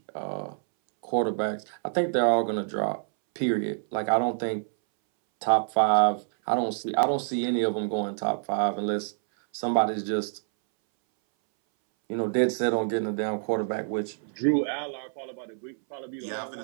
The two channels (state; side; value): silent; left; 60 dB below the other